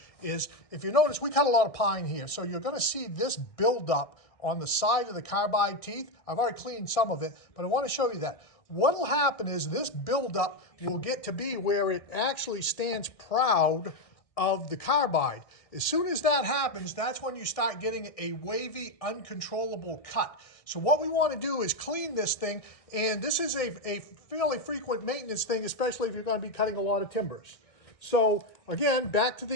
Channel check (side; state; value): right; late; 1.6 ms